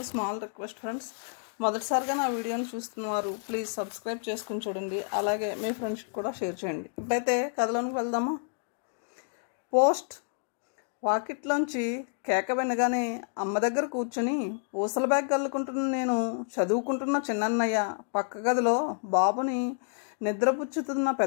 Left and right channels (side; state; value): right; silent; digital silence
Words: స్మాల్ రిక్వెస్ట్ ఫ్రెండ్స్, మొదటిసారిగా నా వీడియోని చూస్తున్నవారు ప్లీజ్ సబ్స్క్రైబ్ చేసుకుని చూడండి. అలాగే మీ ఫ్రెండ్స్కి కూడా షేర్ చేయండి. ఇప్పుడైతే కథలోనికి వెళ్దామా? పోస్ట్. వాకిట్లోంచి కేక వినగానే అమ్మ దగ్గర కూర్చొని ఊసల బ్యాగ్ కల్లుకుంటున్న నేను చదువుకుంటున్న చిన్నన్నయ్య, పక్క గదిలో బాబుని నిద్రపుచ్చుతున్న